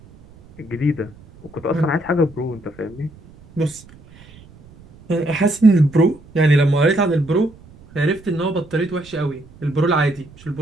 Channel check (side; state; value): right; noise; rumble, 23 dB below the sound